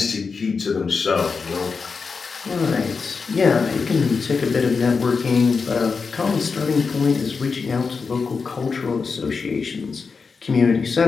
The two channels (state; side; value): quieter; right; 5.0 dB